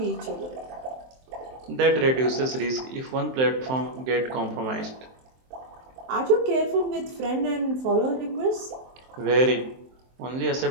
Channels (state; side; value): late; left; 23 ms